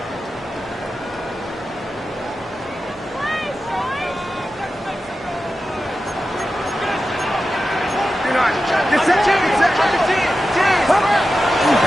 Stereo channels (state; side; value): normal; both; correlation 0.92